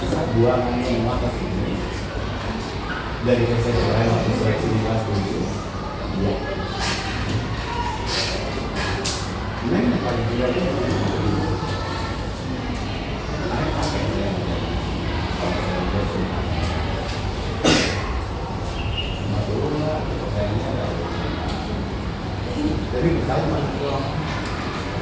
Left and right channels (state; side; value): identical; both; correlation 1.00